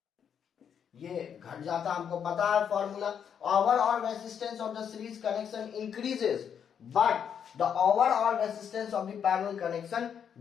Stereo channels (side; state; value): right; quieter; 8.0 dB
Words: ये घट जाता, हमको पता है formula. Overall resistance of the series connection increases but the overall resistance of the parallel connection